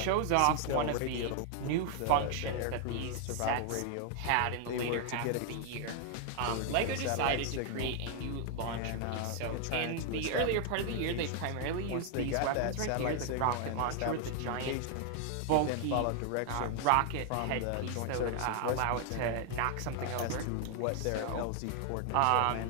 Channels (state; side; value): different; both; correlation 0.00